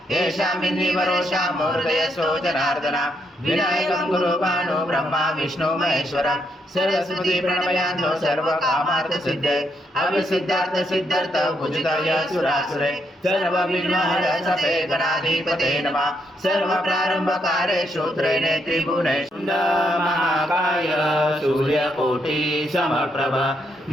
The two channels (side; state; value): both; normal; correlation 0.77